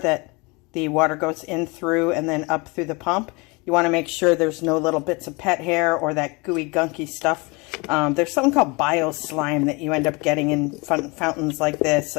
the water goes in through and then up through the pump. You want to make sure there's no little bits of pet hair or that gooey, gunky stuff. There's something called bio-slime that you end up getting in fountains like this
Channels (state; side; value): quieter; right; 27.4 dB